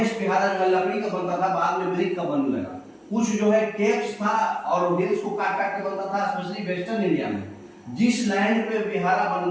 विहारा जो लकड़ी का बनता था, बाद में ब्रिक का बनने लगा। कुछ जो है केव्स था और हिल्स को काट काट के बनता था, स्पेशली वेस्टर्न इंडिया में। जिस लैंड पे विहारा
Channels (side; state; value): both; identical; correlation 1.00